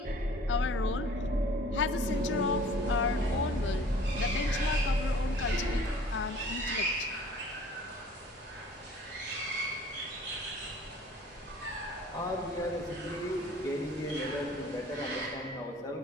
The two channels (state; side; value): normal; both; correlation 0.49